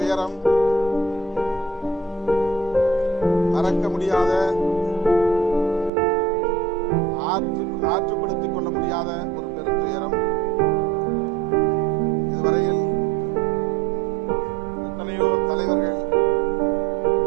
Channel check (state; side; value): drops out; left; at 5.9 s